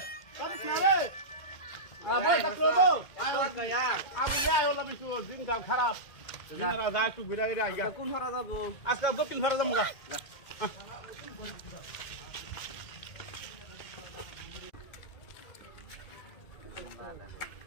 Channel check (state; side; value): late; right; 2.1 ms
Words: কাটিস না রে ভাই কাটলো গো আমি যাই ওলা বিশু দিনকাল খারাপ দিনরা যায় একটু ঘুরে ঘুরে আইগা কোন ভাড়া যাবো আজকে দক্ষিণ ভাড়া যাবো গা